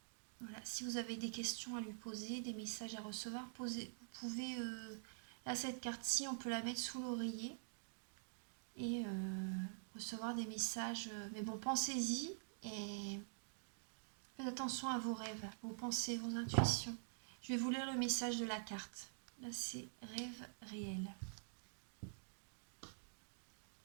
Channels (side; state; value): left; silent; digital silence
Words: Voilà, si vous avez des questions à lui poser, des messages à recevoir, vous pouvez, là, cette carte-ci, on peut la mettre sous l'oreiller et recevoir des messages. Mais bon, pensez-y et faites attention à vos rêves, vos pensées, vos intuitions. Je vais vous lire le message de la carte. Là, c'est rêve réel.